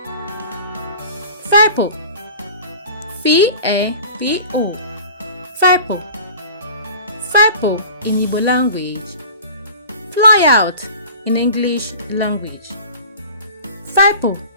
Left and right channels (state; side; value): inverted; both; correlation -0.40